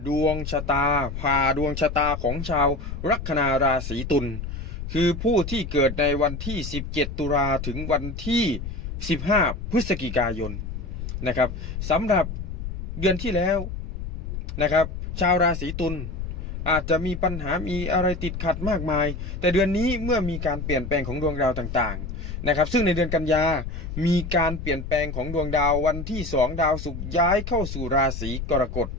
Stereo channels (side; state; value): left; noise; rumble, 6 dB below the sound